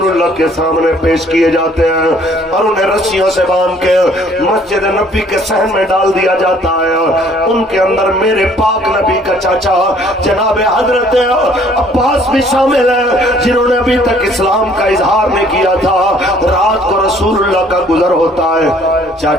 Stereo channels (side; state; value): both; normal; correlation 0.59